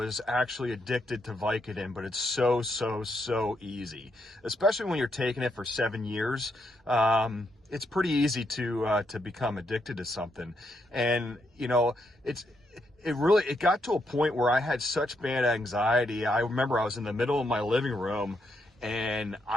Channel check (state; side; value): normal; both; correlation 0.79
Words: actually addicted to Vicodin, but it's so easy, especially when you're taking it for 7 years. It's pretty easy to become addicted to something. And, it got to a point where I had such bad anxiety. I remember I was in the middle of my living room, and